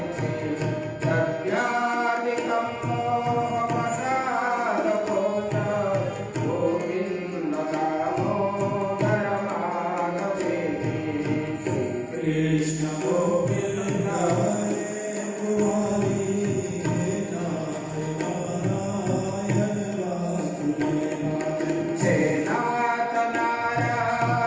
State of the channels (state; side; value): identical; both; correlation 1.00